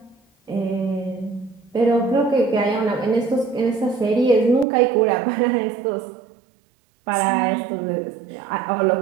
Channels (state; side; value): drops out; left; at 4.7 s